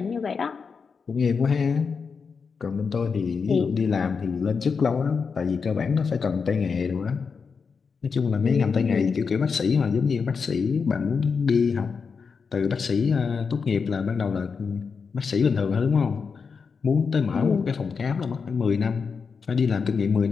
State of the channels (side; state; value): right; quieter; 5.5 dB